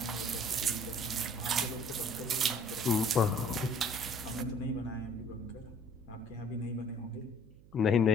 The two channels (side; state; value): right; noise; hum, 23 dB below the sound